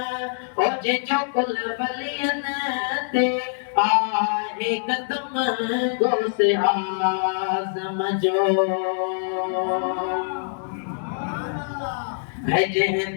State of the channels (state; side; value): silent; right; digital silence